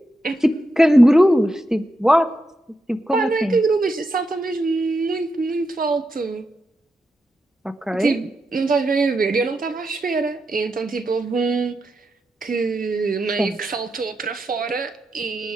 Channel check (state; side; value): normal; both; correlation 0.86